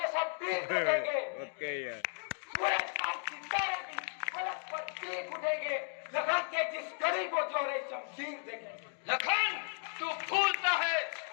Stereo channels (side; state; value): right; silent; 54 dB below the other